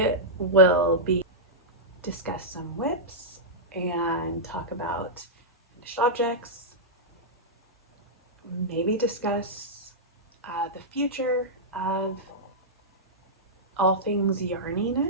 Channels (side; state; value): both; normal; correlation -0.11